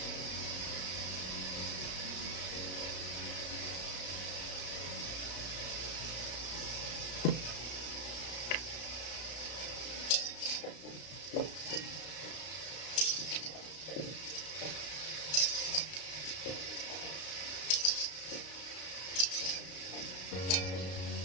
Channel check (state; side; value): late; right; 33 ms